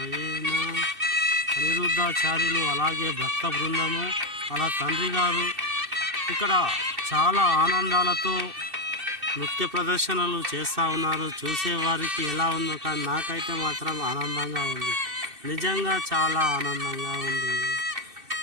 అనిరుద్ధాచార్యులు అలాగే భక్త బృందము అలా తండ్రి గారు ఇక్కడ చాలా ఆనందాలతో నృత్య ప్రదర్శనలు చేస్తూ ఉన్నారు. చూసేవారికి ఎలా ఉందో కానీ నాకైతే మాత్రం ఆనందంగా ఉంది, నిజంగా చాలా ఆనందంగా ఉంది.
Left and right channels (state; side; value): late; left; 2.6 ms